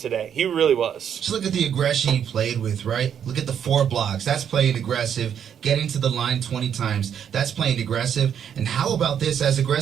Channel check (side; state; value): left; quieter; 8.6 dB